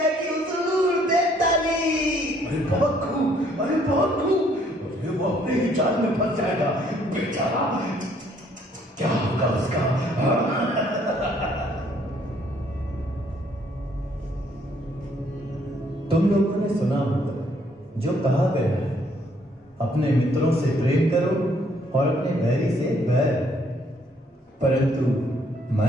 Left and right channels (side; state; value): both; normal; correlation 0.65